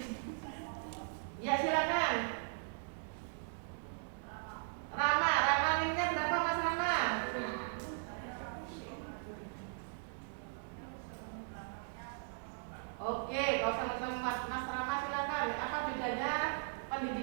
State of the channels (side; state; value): left; silent; digital silence